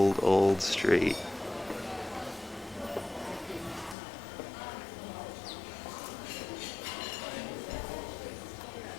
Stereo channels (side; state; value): right; drops out; at 4.0 s